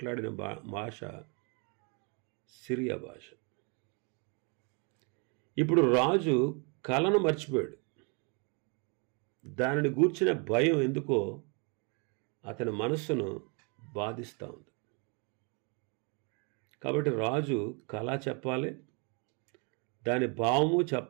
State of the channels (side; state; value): left; quieter; 34.7 dB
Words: భాష సిరియా భాష. ఇప్పుడు రాజు కలను మర్చిపోయాడు. దానిని గూర్చిన భయం ఎందుకో అతని మనస్సును బాధిస్తూ ఉంది. కాబట్టి రాజు కళ చెప్పాలి, దాని భావము